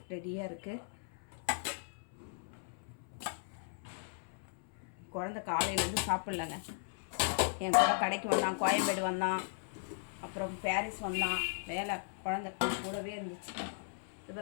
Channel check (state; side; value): silent; right; 53 dB below the other